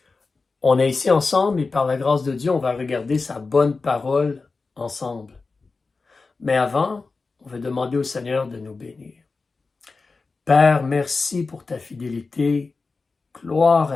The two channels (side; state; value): right; quieter; 4.1 dB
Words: On est ici ensemble et par la grâce de Dieu, on va regarder sa bonne parole ensemble. Mais avant, on va demander au Seigneur de nous bénir. Père, merci pour ta fidélité. Gloire